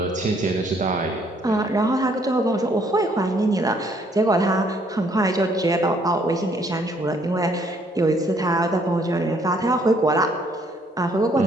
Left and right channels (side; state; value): both; normal; correlation 0.66